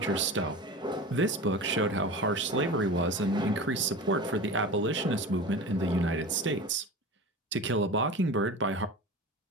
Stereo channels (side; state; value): both; normal; correlation 0.32